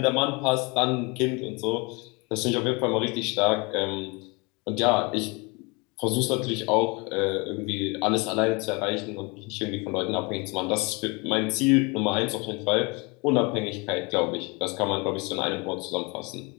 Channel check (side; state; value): right; quieter; 28.6 dB